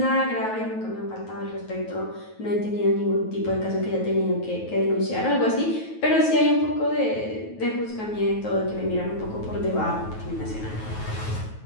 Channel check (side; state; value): right; late; 9.3 ms